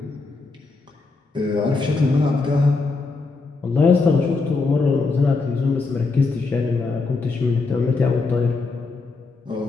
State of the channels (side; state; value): right; quieter; 3.9 dB